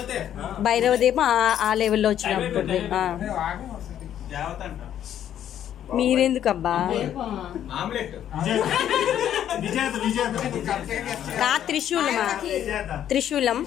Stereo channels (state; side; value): quieter; right; 10.5 dB